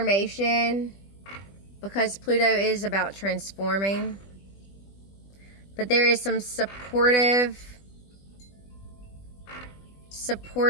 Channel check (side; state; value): right; late; 20 ms